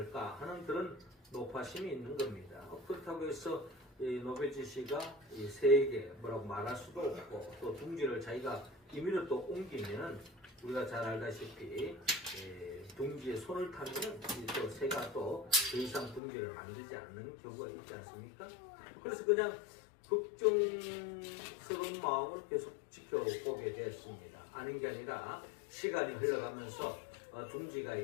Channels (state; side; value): drops out; right; at 16.2 s